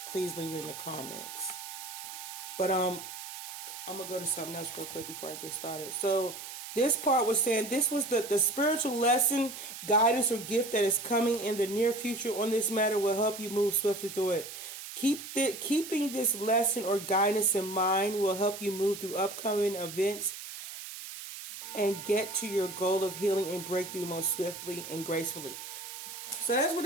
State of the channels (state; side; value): noise; right; hiss, 10 dB below the sound